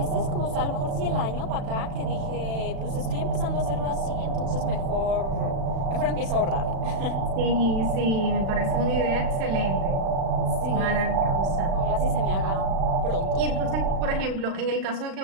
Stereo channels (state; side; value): late; left; 36 ms